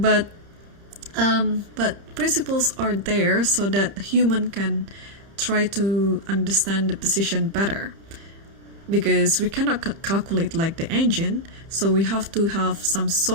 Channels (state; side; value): late; left; 30 ms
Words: principles are there so that human can try to understand the position better, because we cannot calculate like the engine. So we have to have some